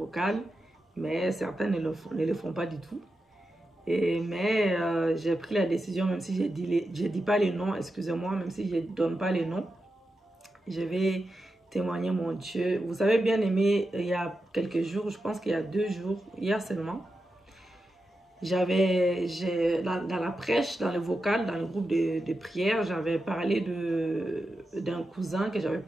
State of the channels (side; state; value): both; normal; correlation 0.89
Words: mais certains ne le font pas du tout. Mais j'ai pris la décision, même si je dis pas les noms, excusez-moi, même si je ne donne pas les noms, je vais témoigner mon Dieu. Vous avez bien aimé, il y a quelques jours, je pense qu'il y a 2 jours, hier seulement, dans la prêche, dans le vocal, dans le groupe de prière, j'avais parlé d'un cousin, que j'avais